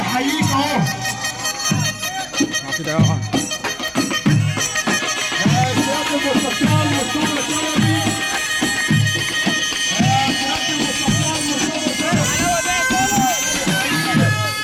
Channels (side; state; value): both; identical; correlation 1.00